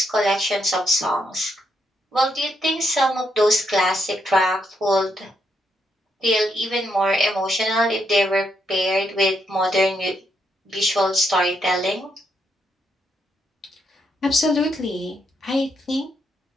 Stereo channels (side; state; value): both; normal; correlation 0.78